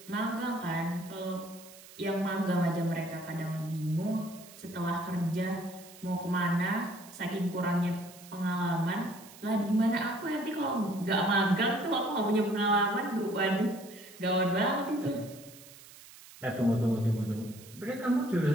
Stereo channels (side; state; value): right; noise; hiss, 19 dB below the sound